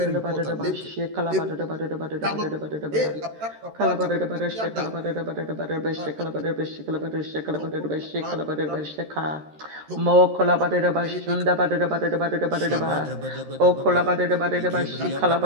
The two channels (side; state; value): left; late; 13 ms